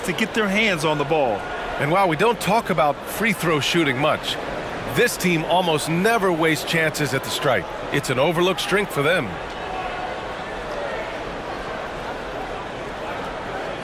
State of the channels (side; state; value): both; identical; correlation 1.00